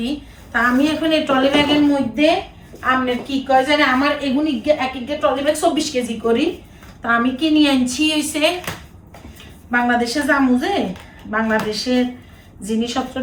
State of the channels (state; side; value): identical; both; correlation 1.00